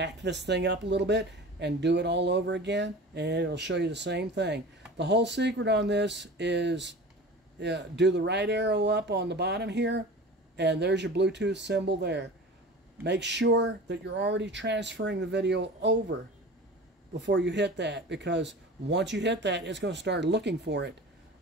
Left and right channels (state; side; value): normal; both; correlation 0.37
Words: this thing up a little bit and do it all over again, and it'll show you the same thing. The whole secret on this is do the right arrow up on the bottom here, and there's your Bluetooth symbol there. Make sure that you're already transferring the video over before you hit that, because once you hit that, it's going to start looking for it.